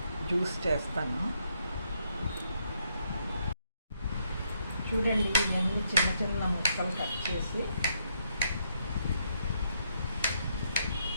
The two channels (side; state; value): both; inverted; correlation -0.75